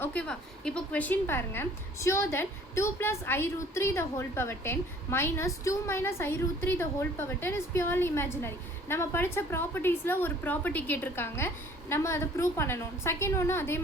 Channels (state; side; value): normal; both; correlation 0.54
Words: ஓகேவா? இப்போ கொஷின் பாருங்கள். Show that 2 + i√3 the whole power 10 minus 2 minus i√3 the whole power 10 is purely imaginary. நம்ம படித்த ப்ராப்பர்ட்டிஸில் ஒரு ப்ராப்பர்ட்டி கேட்டிருக்காங்க, நம்ம அதை ப்ரூவ் பண்ணணும். செகண்ட் ஒன்று அதே